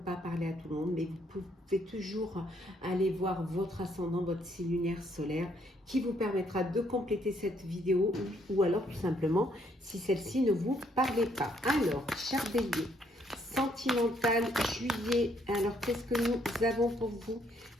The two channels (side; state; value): both; normal; correlation 0.69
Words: parler à tout le monde, mais vous pouvez toujours aller voir votre ascendant, votre signe lunaire solaire qui vous permettra de compléter cette vidéo ou alors tout simplement si celle-ci ne vous parlait pas. Alors, cher Bélier, sentimental, juillet. Alors, qu'est-ce que nous avons pour vous,